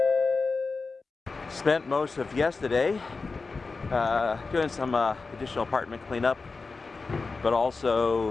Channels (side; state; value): right; quieter; 4.1 dB